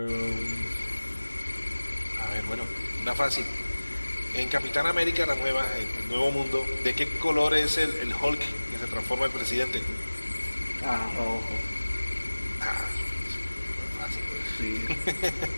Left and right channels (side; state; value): both; inverted; correlation -1.00